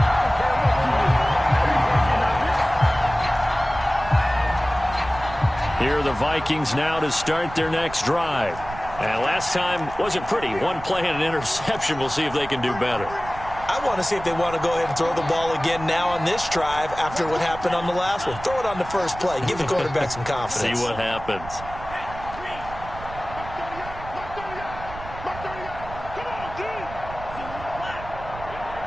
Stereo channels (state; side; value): noise; right; rumble, 13 dB below the sound